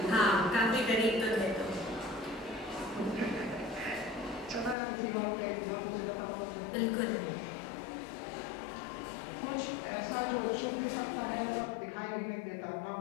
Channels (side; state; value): right; drops out; at 4.8 s